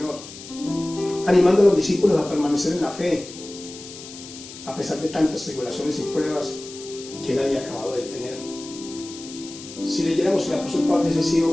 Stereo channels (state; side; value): noise; left; hiss, 15 dB below the sound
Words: animando a los discípulos a permanecer en la fe. A pesar de tantas tribulaciones y pruebas, que él había acabado de tener. Si leyéramos el apóstol Pablo, hubiese sido